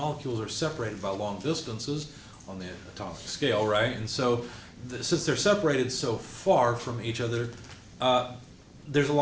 are separated by long distances on the atomic scale, right? And so, since they're separated so far from each other, there's a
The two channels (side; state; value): both; identical; correlation 1.00